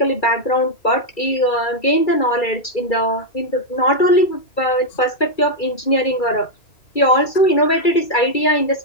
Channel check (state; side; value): late; right; 2.3 ms